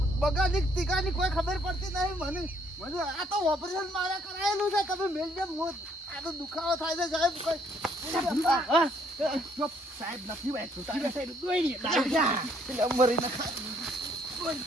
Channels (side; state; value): both; normal; correlation 0.66